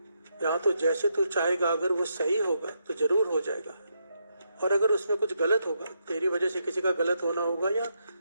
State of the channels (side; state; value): both; inverted; correlation -0.80